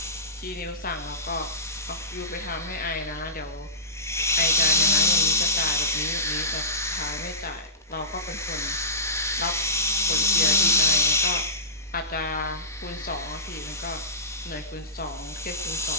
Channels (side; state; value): both; normal; correlation -0.20